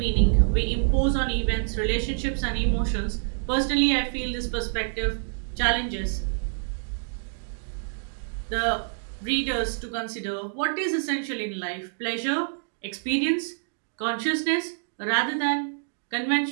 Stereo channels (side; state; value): left; silent; digital silence